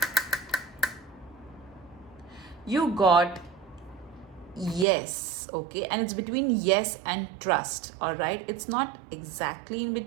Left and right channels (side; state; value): left; drops out; at 4.9 s